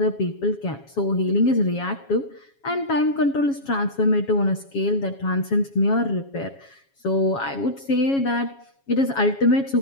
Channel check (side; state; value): right; late; 7.3 ms